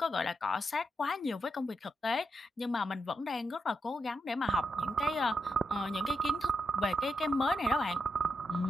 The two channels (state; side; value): normal; both; correlation 0.83